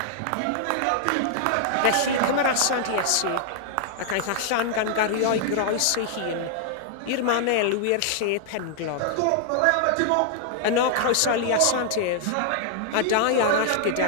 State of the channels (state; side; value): different; both; correlation -0.01